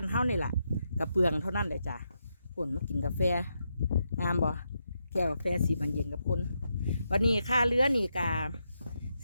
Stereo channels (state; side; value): inverted; both; correlation -0.83